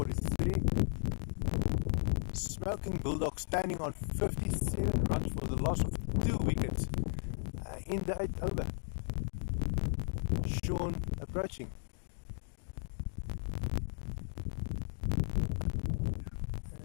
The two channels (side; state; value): right; silent; digital silence